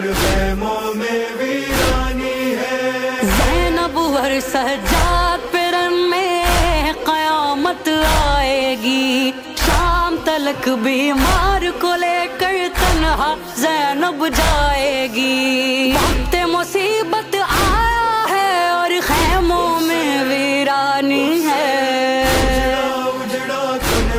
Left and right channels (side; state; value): both; identical; correlation 1.00